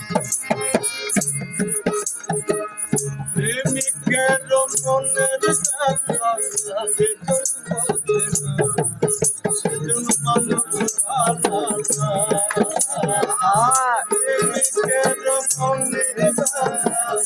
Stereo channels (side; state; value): both; identical; correlation 1.00